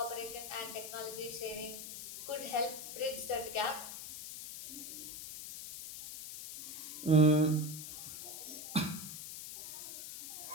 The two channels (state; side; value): noise; left; hiss, 9 dB below the sound